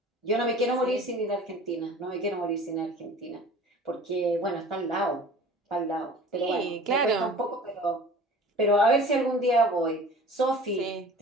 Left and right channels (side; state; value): both; normal; correlation 0.43